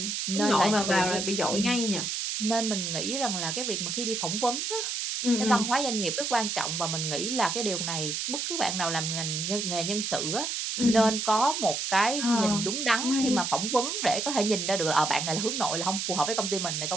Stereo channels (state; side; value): noise; right; hiss, 2 dB below the sound